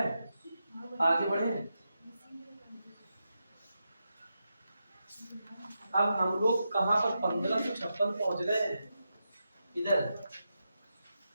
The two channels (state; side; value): inverted; both; correlation -0.87